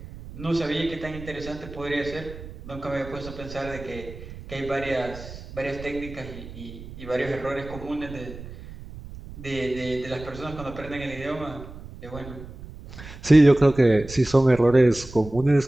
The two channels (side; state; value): right; noise; rumble, 14 dB below the sound